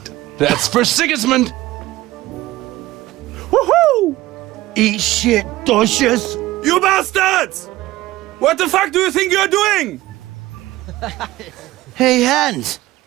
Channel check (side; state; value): left; quieter; 17.2 dB